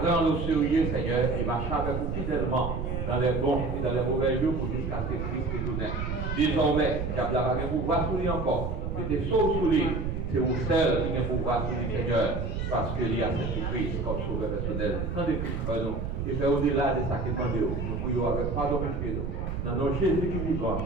prendre au sérieux, Seigneur, et marcher avec vous fidèlement dans les bons et dans les mauvais jours pour jusqu'à ce que Christ retourne. Désormais, diable n'a pas de pouvoir sur lui encore. Mettez sauve sur lui. C'est vous seul qui a pouvoir sur lui, Seigneur, parce qu'il y a cette Christ comme sauveur personnel. Tendez Christ pour nous et faire au-delà de ça qui est nous. Nous prions avec pardon péché nous. Dans nos Jésus qui vivant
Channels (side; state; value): right; noise; rumble, 3 dB below the sound